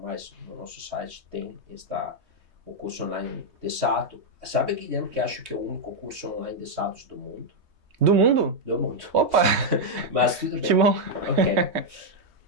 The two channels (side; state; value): left; late; 3.2 ms